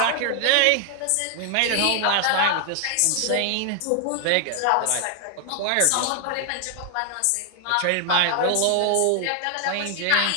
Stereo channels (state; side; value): different; both; correlation 0.00